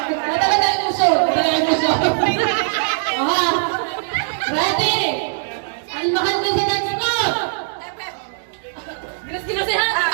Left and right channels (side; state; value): left; silent; digital silence